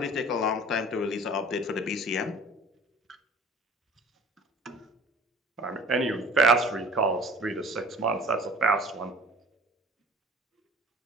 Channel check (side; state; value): both; normal; correlation 0.46